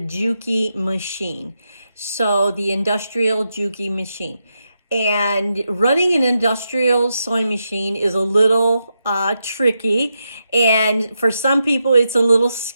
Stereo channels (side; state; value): both; inverted; correlation -0.85